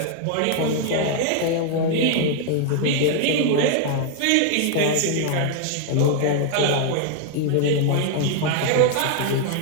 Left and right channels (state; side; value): different; both; correlation 0.00